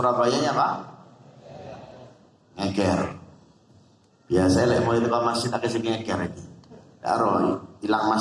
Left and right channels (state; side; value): identical; both; correlation 1.00